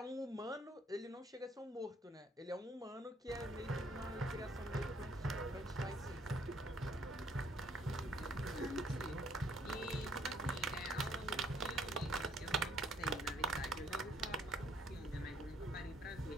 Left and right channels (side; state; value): both; normal; correlation 0.65